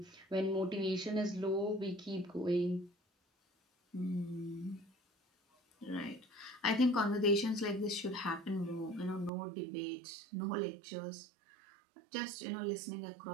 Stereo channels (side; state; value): left; drops out; at 9.3 s